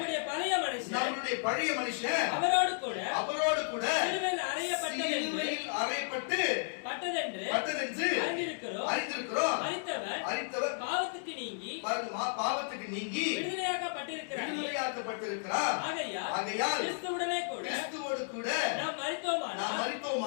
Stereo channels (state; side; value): silent; right; digital silence